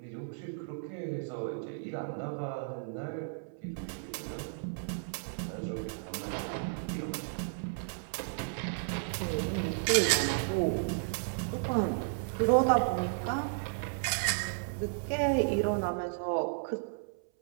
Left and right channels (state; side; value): silent; left; 55 dB below the other